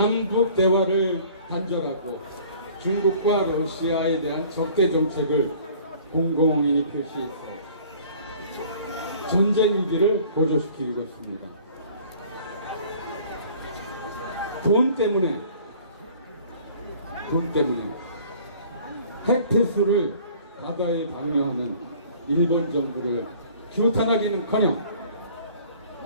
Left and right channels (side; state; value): both; inverted; correlation -0.51